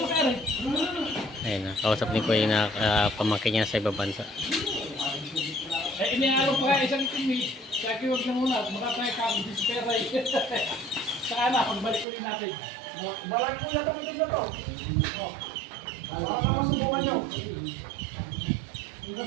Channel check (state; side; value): drops out; left; at 12.1 s